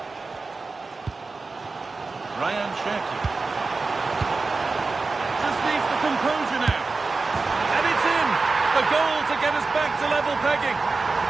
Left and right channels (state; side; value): quieter; left; 3.9 dB